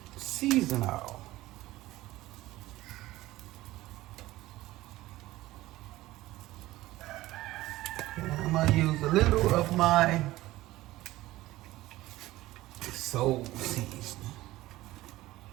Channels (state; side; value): quieter; left; 17.1 dB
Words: seasoning oil. And I'm gonna use a little of my soul seasoning.